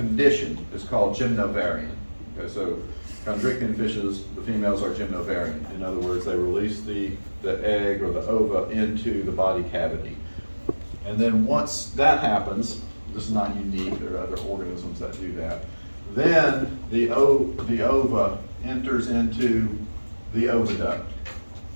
is called gymnovarian. Okay, so chondrichthyan fishes, the females are gymnovarian. In other words, they release the egg or the ova into the body cavity. And then once that happens, this is not unique, there are other organisms that do that, then the ova enters into the oviduct.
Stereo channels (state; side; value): inverted; both; correlation -1.00